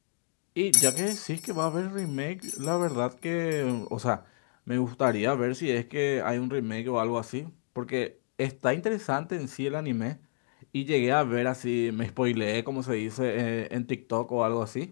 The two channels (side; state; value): right; silent; digital silence